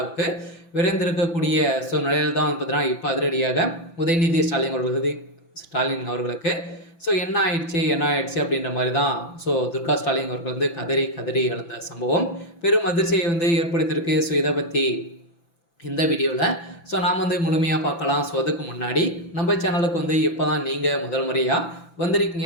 விரைந்திருக்கக்கூடிய நிலையில் தான் பார்த்தீங்கன்னா இப்போ அதிரடியாக உதயநிதி ஸ்டாலின் அவர்களுக்கு என்ன ஆயிடுச்சு அப்படின்ற மாதிரி தான் துர்கா ஸ்டாலின் அவர்கள் கதறி கதறி எழுந்த சம்பவம் பெரும் அதிர்ச்சியை ஏற்படுத்தியிருக்கு. இதை பற்றி இந்த வீடியோவில் நாம் முழுமையாக பார்க்கலாம். அதுக்கு முன்னாடி நம்ம சேனலுக்கு இப்போ தான் நீங்கள் முதல் முறையாக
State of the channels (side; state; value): right; late; 5.9 ms